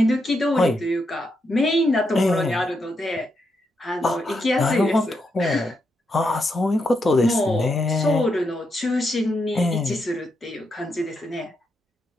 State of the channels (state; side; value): normal; both; correlation 0.82